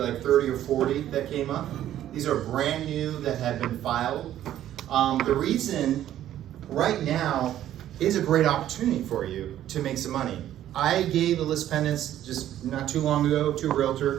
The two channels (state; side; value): quieter; left; 12.1 dB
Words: 30 or 40 that came up. These are brand new that have been filed. The reason right now is a great opportunity for you to make some money. I gave the list pendants just not too long ago to a